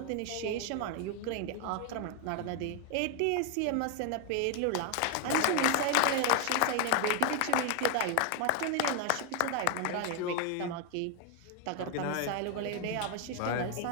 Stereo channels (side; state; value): both; different; correlation 0.01